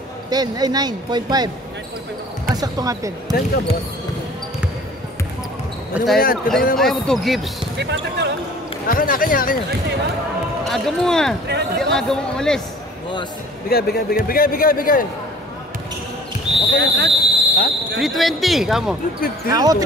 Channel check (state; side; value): normal; both; correlation 0.47